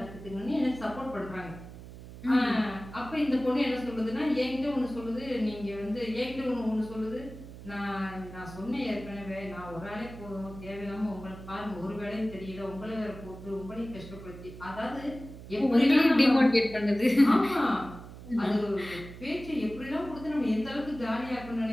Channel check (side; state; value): right; noise; hum, 14 dB below the sound